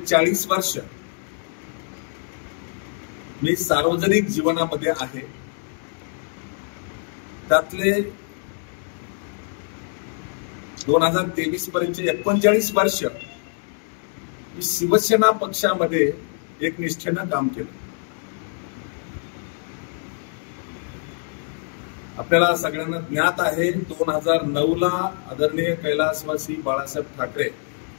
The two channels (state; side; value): silent; right; 55 dB below the other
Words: वर्ष मी सार्वजनिक जीवनामध्ये आहे। त्यातले 2023 पर्यंत 39 वर्ष मी शिवसेना पक्षामध्ये एक निष्ठेनं काम केलं। आपल्याला सगळ्यांना ज्ञात आहे 2009 ला आदरणीय कैलासवासी बाळासाहेब ठाकरे